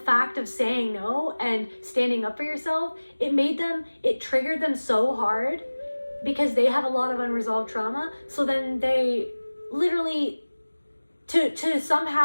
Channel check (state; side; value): inverted; both; correlation -1.00